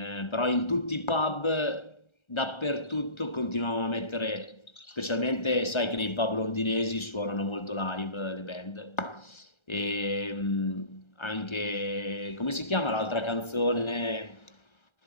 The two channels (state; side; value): late; right; 1.3 ms